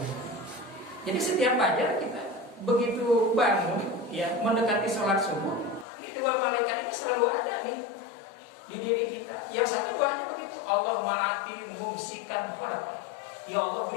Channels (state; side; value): drops out; right; at 5.9 s